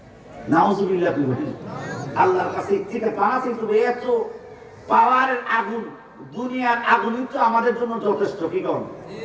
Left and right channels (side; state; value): both; identical; correlation 1.00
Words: নাউজুবিল্লাহ। আল্লাহর কাছে থেকে পাওয়া কিন্তু এত পাওয়ারের আগুন, দুনিয়ার আগুনই তো আমাদের জন্য যথেষ্ট। কি করেন?